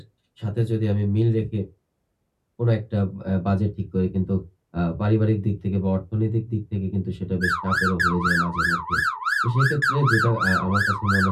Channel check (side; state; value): both; identical; correlation 1.00